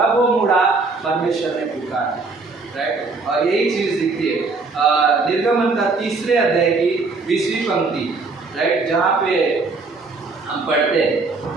वो मुड़ा परमेश्वर ने पुकारा, राइट। और यही चीज दिखती है निर्गमन का 3 अध्याय की 20वीं पंक्ति, राइट, जहाँ पे हम पढ़ते हैं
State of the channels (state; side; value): quieter; left; 3.9 dB